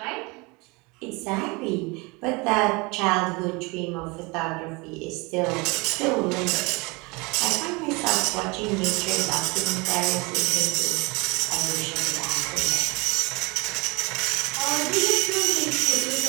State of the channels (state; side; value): quieter; left; 26.9 dB